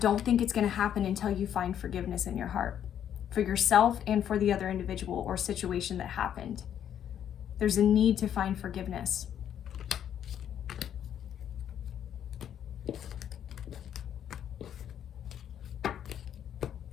think it's going to happen until you find forgiveness in your heart for yourself and for the other individual or situation that happened. There's a need to find forgiveness.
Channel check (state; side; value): quieter; right; 9.7 dB